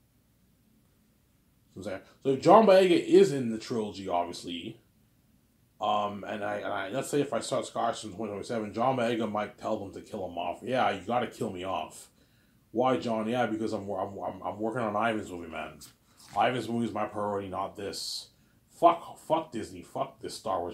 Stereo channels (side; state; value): both; identical; correlation 1.00